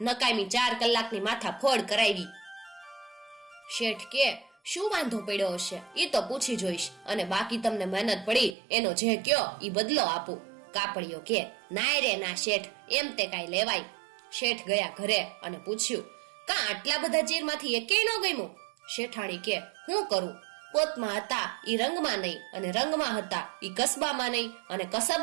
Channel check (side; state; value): left; drops out; at 8.6 s